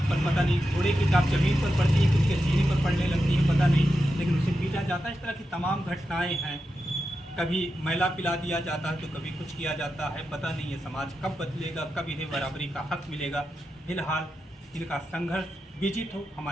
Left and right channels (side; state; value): both; normal; correlation 0.89